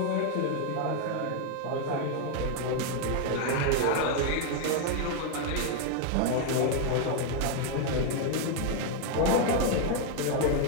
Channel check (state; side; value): different; both; correlation 0.00